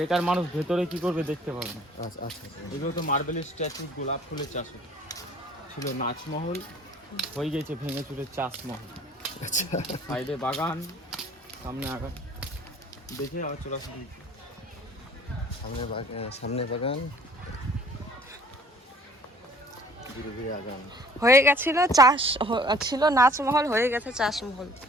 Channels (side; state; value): both; normal; correlation 0.53